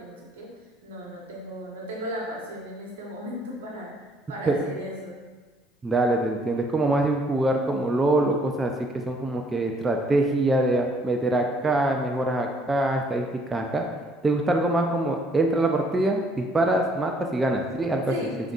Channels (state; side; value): normal; both; correlation 0.64